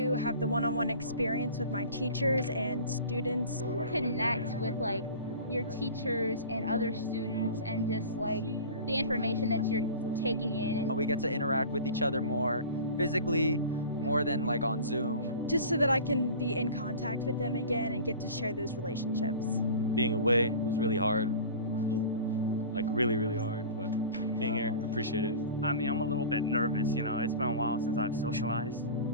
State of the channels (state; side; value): inverted; both; correlation -0.37